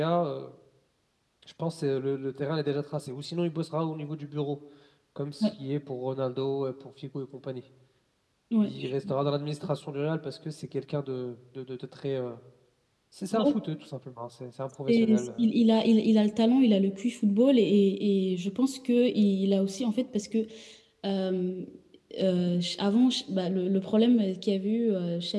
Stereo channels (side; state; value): both; identical; correlation 1.00